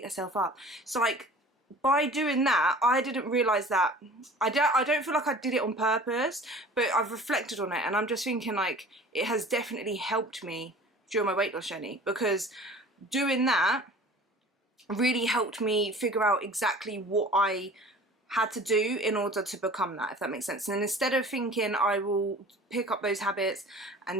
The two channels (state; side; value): normal; both; correlation 0.44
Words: herself up. So like, by doing that, I didn't realise that, I don't feel like I did it on purpose, but I've reflected on it and I'm just thinking like, it has definitely helped me during my weight loss journey, because doing that really helped me figure out exactly what I had to do in order to become that, if that makes sense. And instead of thinking I will pick up those habits